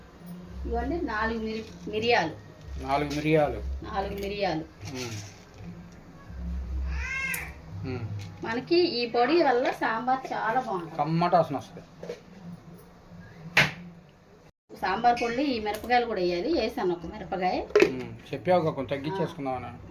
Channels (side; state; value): both; identical; correlation 1.00